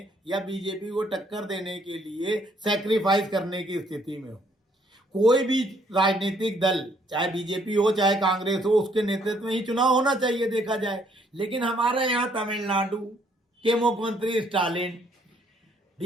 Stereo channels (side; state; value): both; normal; correlation 0.67